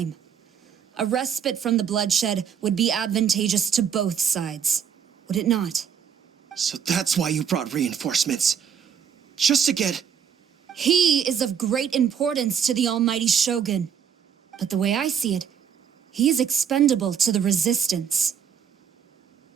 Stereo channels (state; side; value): quieter; left; 7.8 dB